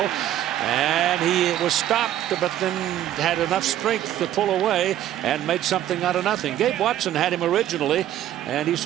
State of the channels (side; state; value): left; quieter; 12.2 dB